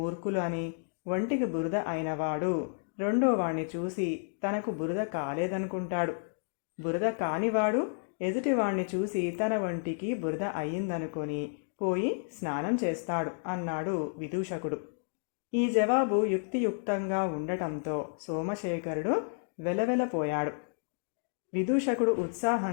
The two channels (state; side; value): silent; right; digital silence